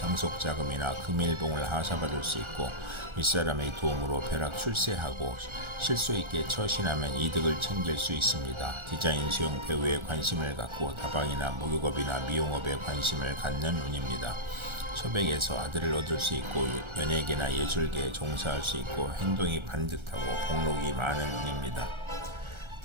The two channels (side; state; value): left; late; 1.4 ms